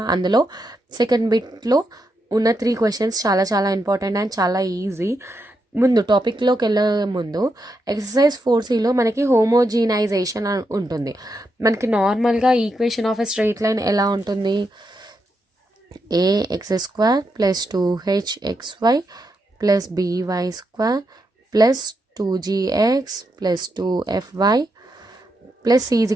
అందులో second బిట్లో ఉన్న 3 questions చాలా important and చాలా easy. ముందు టాపిక్లోకి వెళ్ళే ముందు ఎక్సర్సైజ్ 4Cలో మనకి హోమోజీనైజేషన్ ఉంటుంది. మనకి నార్మల్గా equation of a straight line ఎలా ఉంటుంది? ax² + 2hxy plus by square plus 2gx plus 2fy plus c is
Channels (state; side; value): normal; both; correlation 0.83